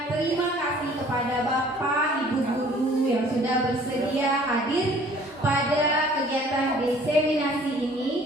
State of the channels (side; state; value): both; normal; correlation 0.54